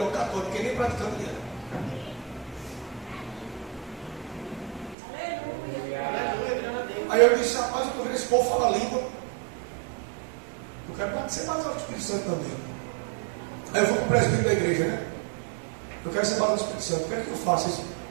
o católico, que nem praticante era. Aí eu disse: rapaz, eu estou vendo esse povo falar língua. Eu quero ser batizado do Espírito Santo também. Aí eu vou para o presbítero da igreja, né? Eu quero ser batizado do Espírito Santo. O que é que eu faço? Isso?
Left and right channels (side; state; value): left; drops out; at 5.0 s